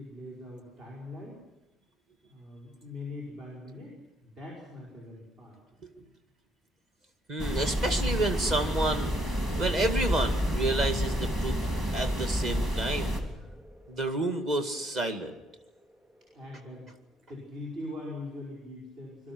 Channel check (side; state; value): both; normal; correlation 0.69